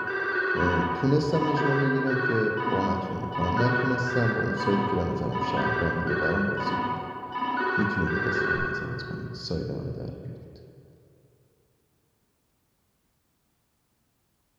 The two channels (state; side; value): identical; both; correlation 1.00